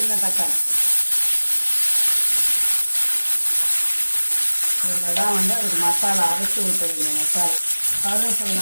தக்காளி. இதில் தான் அதுக்கு மசாலா அரைச்சி ஊற்றுவீங்க. மசாலா கருவேப்பிலை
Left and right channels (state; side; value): inverted; both; correlation -1.00